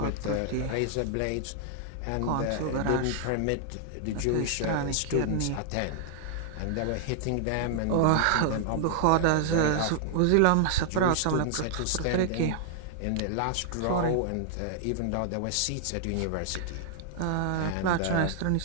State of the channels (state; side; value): different; both; correlation -0.01